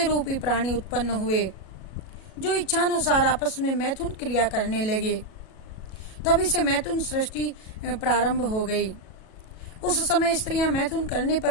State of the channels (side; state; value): right; late; 37 ms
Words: रूपी प्राणी उत्पन्न हुए जो इच्छानुसार आपस में मैथुन क्रिया करने लगे। तभी से मैथुन सृष्टि प्रारंभ हो गई। उस समय स्त्रियां मैथुन करने